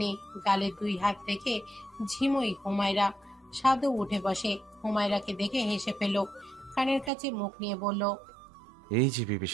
গালে 2 হাত রেখে ঝিমুই হুমায়রা। সাদও উঠে বসে, হুমায়রাকে দেখে হেসে ফেলল, কানের কাছে মুখ নিয়ে বলল, এই যে বিবি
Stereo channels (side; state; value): left; drops out; at 7.1 s